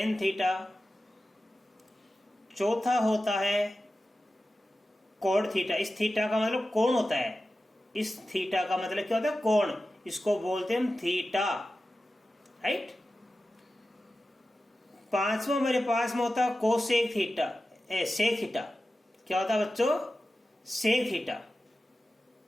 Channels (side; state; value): both; normal; correlation 0.94